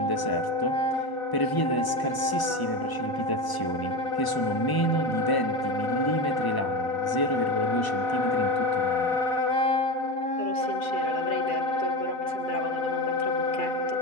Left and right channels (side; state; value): right; late; 1.0 ms